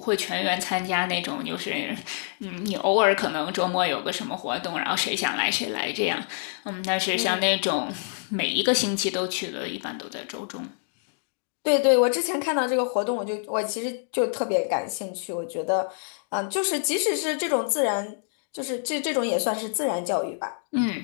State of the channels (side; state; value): right; silent; digital silence